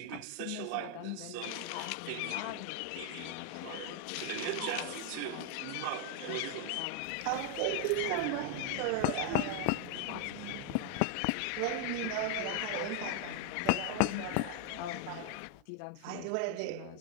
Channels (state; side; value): different; both; correlation 0.00